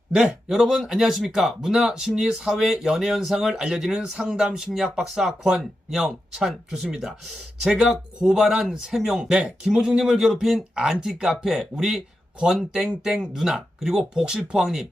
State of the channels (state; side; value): normal; both; correlation 0.89